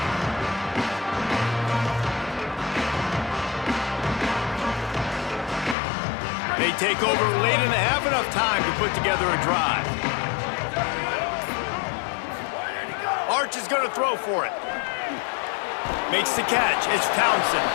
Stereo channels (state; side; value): drops out; right; at 5.8 s